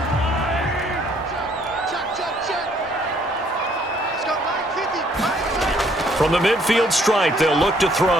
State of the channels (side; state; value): both; normal; correlation 0.64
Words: From the midfield stripe, they'll look to throw.